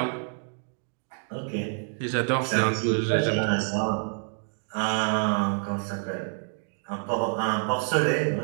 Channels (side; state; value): left; silent; digital silence